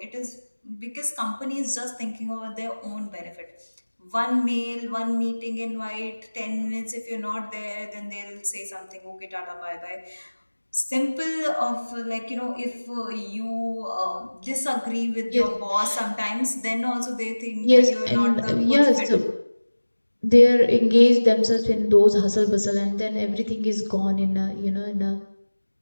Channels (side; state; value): both; inverted; correlation -1.00